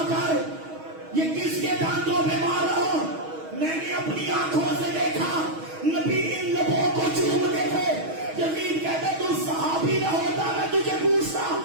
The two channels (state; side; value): late; left; 6.3 ms